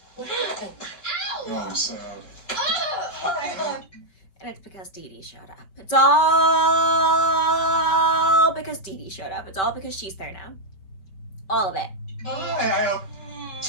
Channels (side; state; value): right; late; 5.1 ms